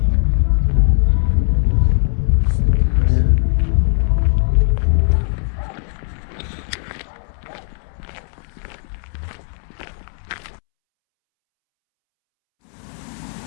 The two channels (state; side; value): silent; right; 67 dB below the other